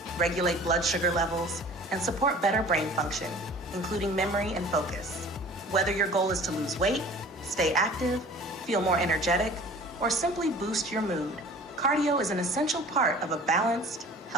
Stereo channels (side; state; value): both; normal; correlation 0.45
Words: regulate blood sugar levels, and support better brain function, including memory and focus. Whether your goal is to lose weight, stay active, feel more energetic, or simply boost your mood, cardio is an essential part of a balanced,